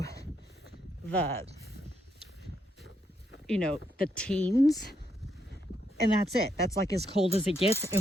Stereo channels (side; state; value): both; normal; correlation 0.78